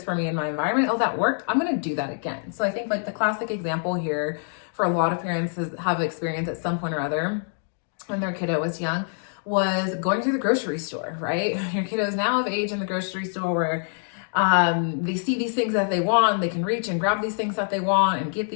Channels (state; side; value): silent; right; digital silence